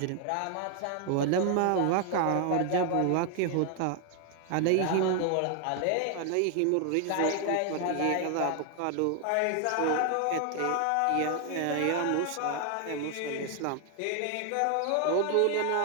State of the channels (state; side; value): different; both; correlation 0.00